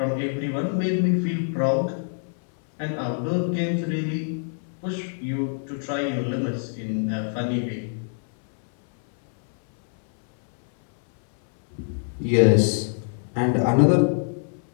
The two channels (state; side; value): silent; right; 60 dB below the other